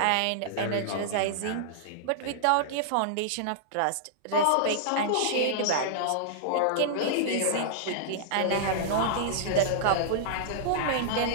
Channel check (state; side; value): different; both; correlation -0.02